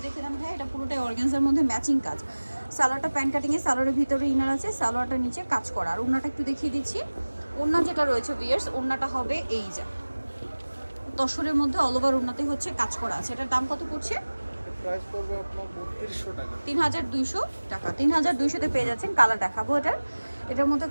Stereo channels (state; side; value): inverted; both; correlation -1.00